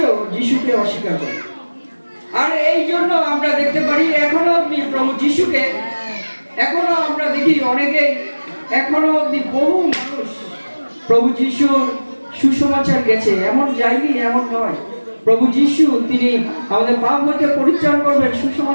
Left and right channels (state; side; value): inverted; both; correlation -1.00